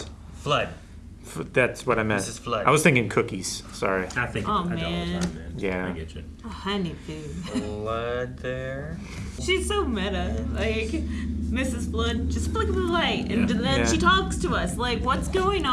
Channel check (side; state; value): both; identical; correlation 1.00